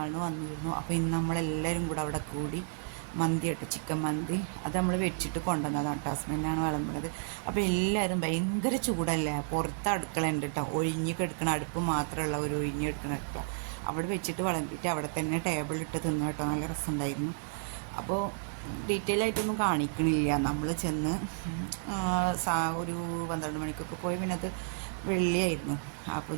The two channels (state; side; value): silent; left; digital silence